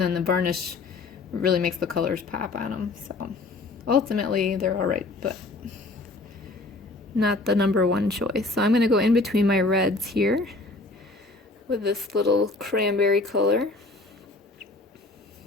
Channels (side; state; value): right; quieter; 3.2 dB